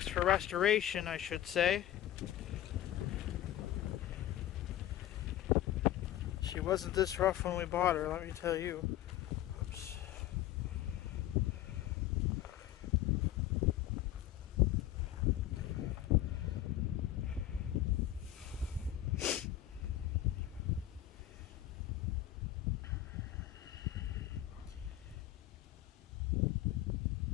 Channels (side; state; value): right; quieter; 13.0 dB